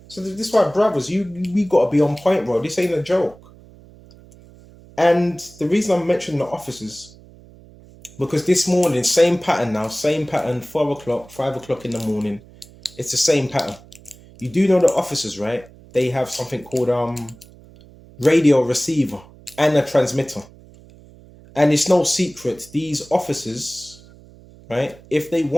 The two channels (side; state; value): right; noise; hum, 23 dB below the sound